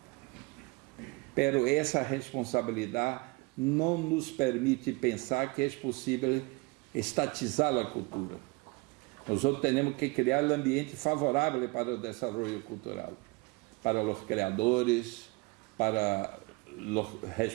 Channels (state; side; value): quieter; left; 26.1 dB